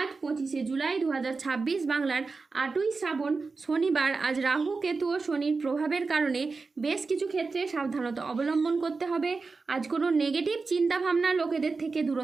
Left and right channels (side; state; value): left; quieter; 4.2 dB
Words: 25শে জুলাই 2026 বাংলার 8ই শ্রাবণ শনিবার আজ রাহু, কেতু ও শনির প্রভাবের কারণে বেশ কিছু ক্ষেত্রে সাবধানতা অবলম্বন করতে হবে। আজ কোনো নেগেটিভ চিন্তাভাবনা লোকেদের থেকে